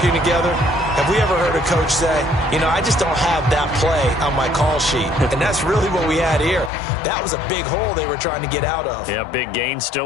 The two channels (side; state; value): right; drops out; at 6.7 s